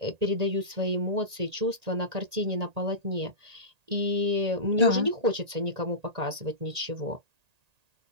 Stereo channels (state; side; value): late; left; 1.8 ms